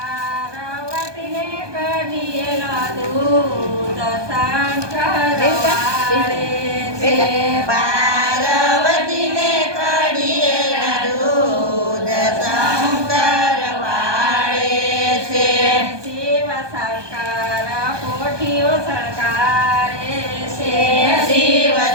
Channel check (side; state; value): left; late; 1.2 ms